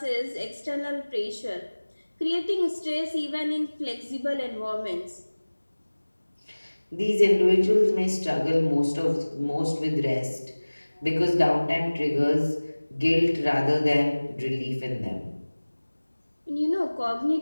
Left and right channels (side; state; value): both; inverted; correlation -1.00